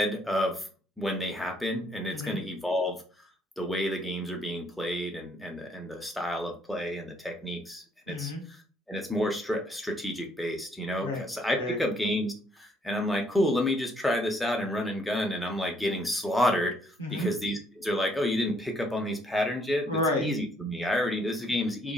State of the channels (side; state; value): both; normal; correlation 0.68